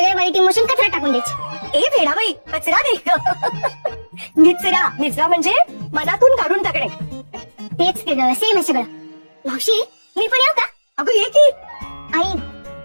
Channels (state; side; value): inverted; both; correlation -1.00